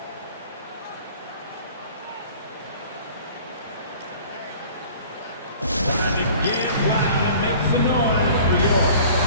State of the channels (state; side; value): inverted; both; correlation -0.47